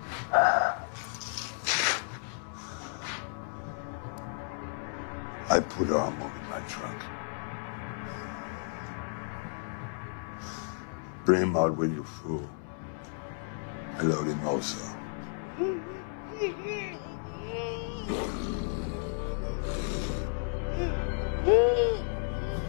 I put armor in my trunk. Bring him out when you're full. I load him also.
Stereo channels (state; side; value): silent; right; digital silence